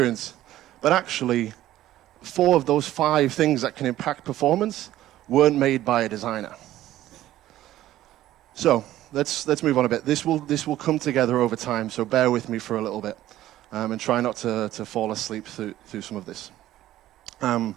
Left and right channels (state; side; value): quieter; left; 14.1 dB